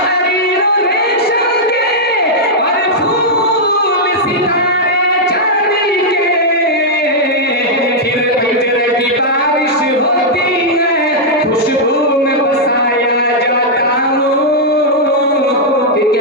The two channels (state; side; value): normal; both; correlation -0.06